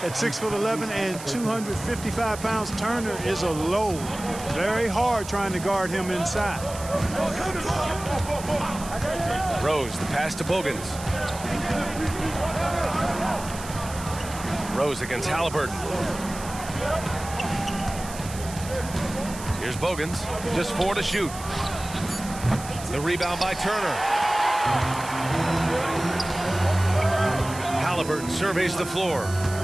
At 6'11" and 255 pounds, Turner is a load. Very hard trying to guard him inside. Rose, the pass to Bogans. Rose against Haliburton. Here's Bogans, just 4 to shoot. The rebound by Turner. Haliburton surveys the floor.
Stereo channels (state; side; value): noise; right; hiss, 13 dB below the sound